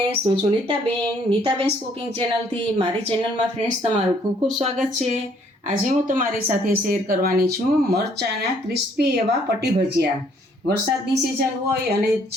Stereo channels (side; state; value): both; normal; correlation 0.64